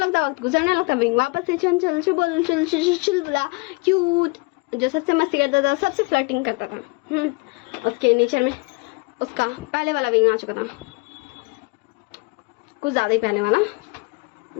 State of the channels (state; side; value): quieter; right; 27.9 dB